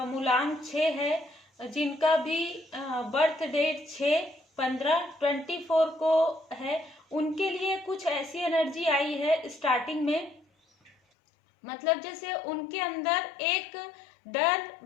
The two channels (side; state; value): right; drops out; at 11.0 s